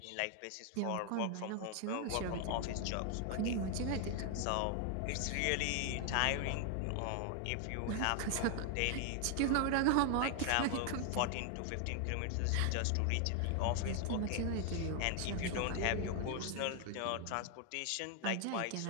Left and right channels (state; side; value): different; both; correlation 0.00